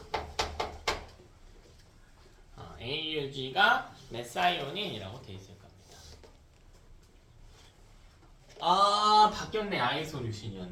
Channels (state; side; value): identical; both; correlation 1.00